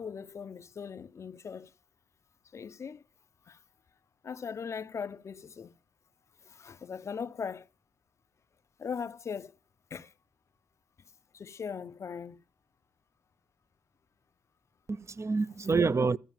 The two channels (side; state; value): both; normal; correlation 0.79